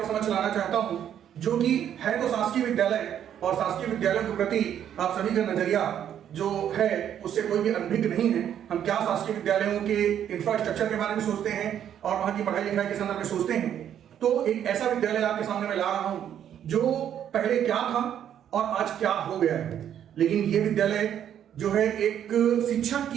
समझ लाना चाहता हूं जो कि है तो शासकीय विद्यालय और शासकीय विद्यालयों के प्रति आप सभी का नजरिया जो है उससे कोई भी अनभिज्ञ नहीं है। हम क्या शासकीय विद्यालयों के इंफ्रास्ट्रक्चर के बारे में सोचते हैं और वहां की पढ़ाई लिखाई के संदर्भ में सोचते हैं। तो एक ऐसा विद्यालय आपके सामने मैं ला रहा हूं जो पहले क्या था और आज क्या हो गया है। लेकिन ये विद्यालय जो है एक शिक्षक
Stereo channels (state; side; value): quieter; left; 9.8 dB